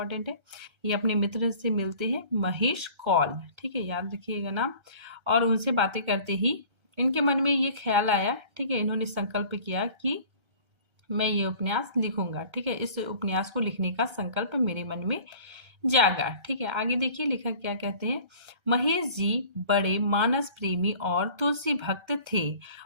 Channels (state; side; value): late; left; 1.3 ms